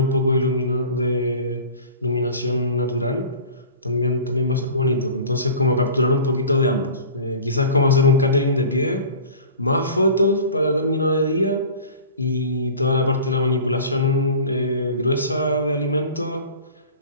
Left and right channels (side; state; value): both; inverted; correlation -0.40